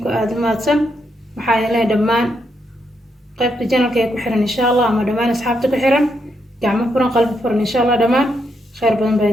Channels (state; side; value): normal; both; correlation 0.79